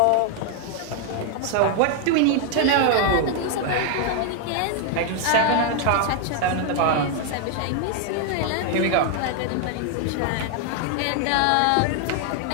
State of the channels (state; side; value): different; both; correlation 0.00